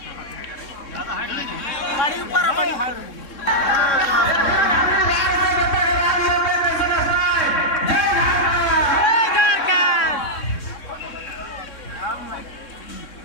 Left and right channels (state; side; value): late; right; 3.6 ms